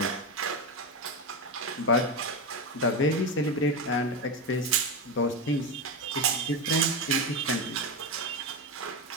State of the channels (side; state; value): both; normal; correlation 0.14